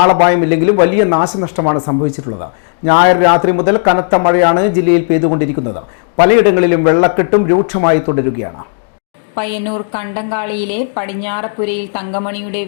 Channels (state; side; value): silent; right; digital silence